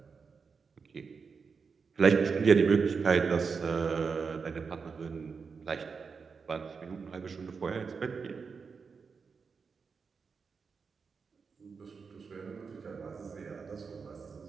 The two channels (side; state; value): left; quieter; 5.4 dB